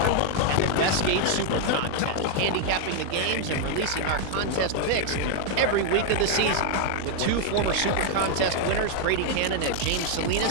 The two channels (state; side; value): different; both; correlation 0.00